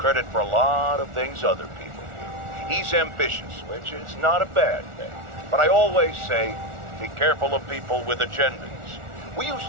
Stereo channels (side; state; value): left; late; 1.4 ms